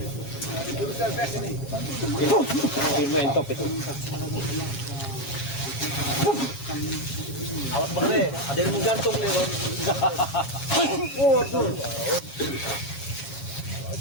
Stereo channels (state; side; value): late; right; 7.3 ms